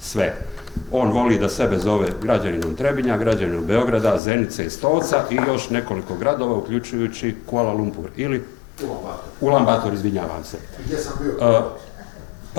On voli da sebe zove građaninom Trebinja, građaninom Beograda, Zenice i Stolca i još nekoliko gradova, uključujući Kuala Lumpur ili Ulan Bator, izvinjavam se.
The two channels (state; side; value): drops out; right; at 4.2 s